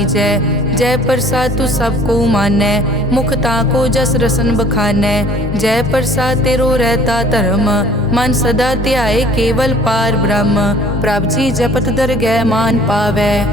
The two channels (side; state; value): both; normal; correlation 0.52